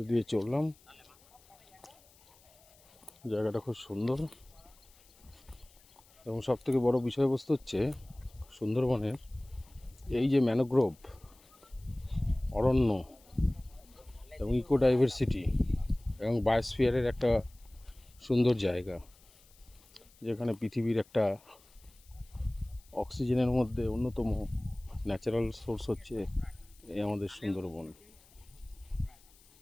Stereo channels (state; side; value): noise; left; hiss, 28 dB below the sound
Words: দিয়ে চললাম। জায়গাটা খুব সুন্দর এবং সবথেকে বড় বিষয়বস্তু হচ্ছে সুন্দরবনের এই যে ম্যানোগ্রোভ অরণ্য এবং ইকো ডাইভার্সিটি এবং বায়োস্ফিয়ারের একটা সুন্দর জায়গা, যেখানে পৃথিবীর একটা অক্সিজেনের মধ্যে অন্যতম ন্যাচারাল সোর্স হচ্ছে এই আমাদের সুন্দরবন।